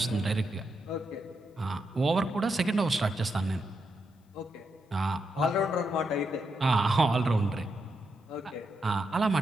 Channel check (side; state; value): both; normal; correlation 0.83